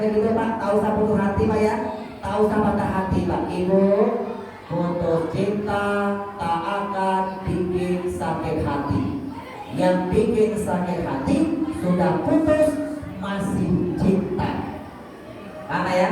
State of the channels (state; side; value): identical; both; correlation 1.00